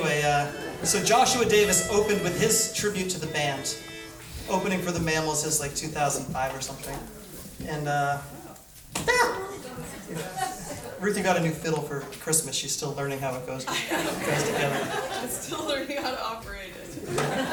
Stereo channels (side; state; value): both; identical; correlation 1.00